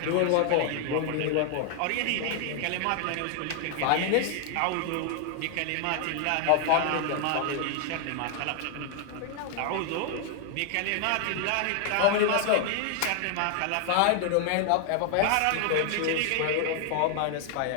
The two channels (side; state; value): both; different; correlation 0.00